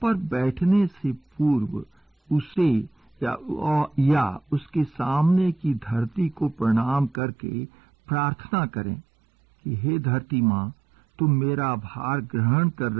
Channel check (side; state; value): left; drops out; at 7.2 s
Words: पर बैठने से पूर्व उसे या उसके सामने की धरती को प्रणाम करके प्रार्थना करें कि हे धरती माँ, तुम मेरा भार ग्रहण कर